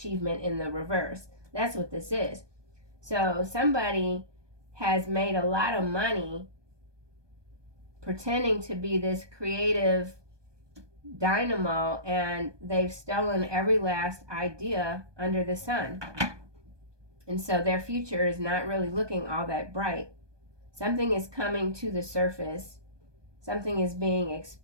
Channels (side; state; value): left; late; 1.2 ms